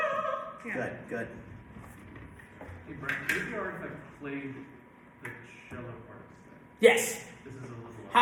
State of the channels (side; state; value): both; identical; correlation 1.00